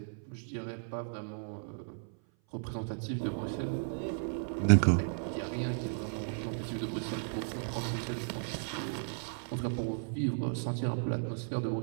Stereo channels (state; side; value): silent; left; 55 dB below the other